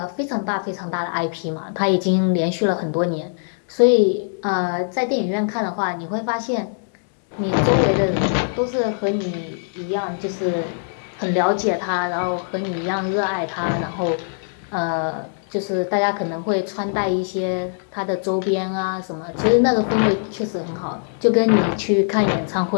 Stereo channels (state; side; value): silent; right; digital silence